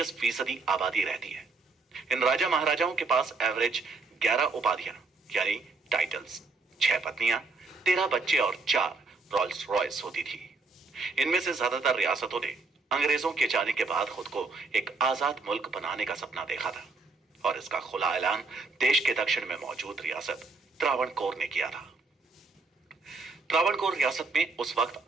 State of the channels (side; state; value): left; quieter; 4.1 dB